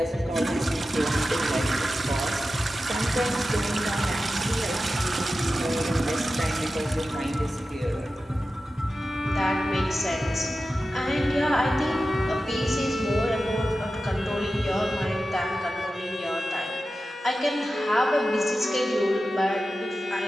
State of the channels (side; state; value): both; normal; correlation 0.93